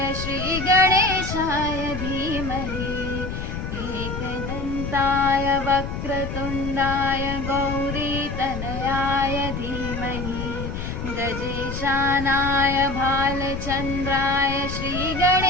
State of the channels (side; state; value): left; noise; rumble, 5 dB below the sound